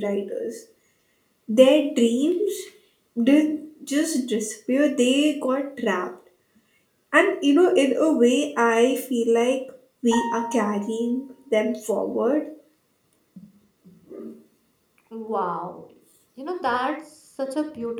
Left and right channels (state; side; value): identical; both; correlation 1.00